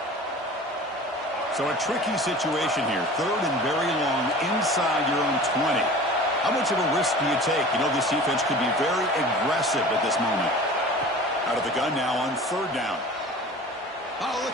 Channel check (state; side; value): normal; both; correlation 0.40